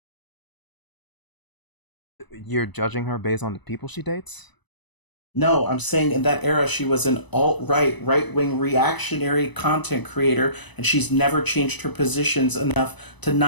You're judging her based on the people she dates? No, I'm saying in that era she was an alt-right, right-wing reactionary content creator, and she's never changed her positions enough to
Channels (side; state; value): right; late; 1.0 ms